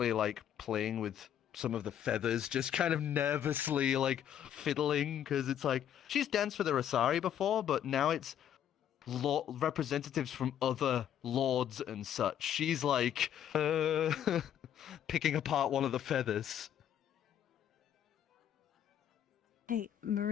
playing with some of the feathers, just kind of nervously fiddling, because it's she's danced for the Rosari before, but now it's representatives from other lords and such. She's picking apart one of the feathers. Hey,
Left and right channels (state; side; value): quieter; right; 10.0 dB